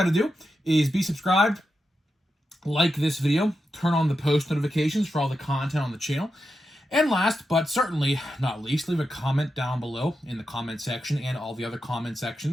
to do is be subscribed, like this video, turn on the post notifications for all the content on the channel, and last but certainly not least, leave a comment down below in the comment section and all the other comment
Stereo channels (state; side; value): normal; both; correlation 0.88